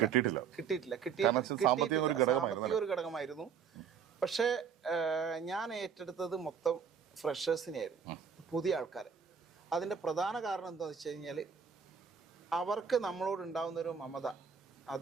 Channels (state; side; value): quieter; left; 6.8 dB